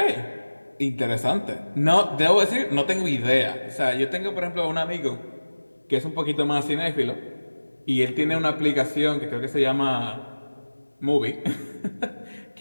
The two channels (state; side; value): inverted; both; correlation -1.00